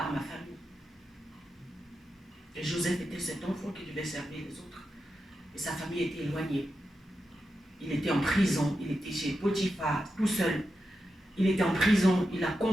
ma famille. Et Joseph était cet enfant qui devait servir les autres. Et sa famille était éloignée. Il était en prison, il était chez Potiphar, tout seul. Il était en prison, il a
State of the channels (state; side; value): normal; both; correlation 0.89